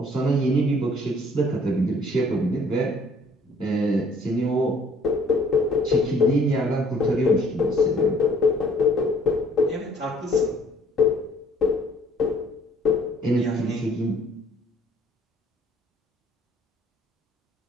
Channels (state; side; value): normal; both; correlation 0.59